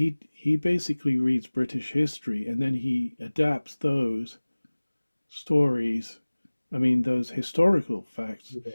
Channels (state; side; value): inverted; both; correlation -1.00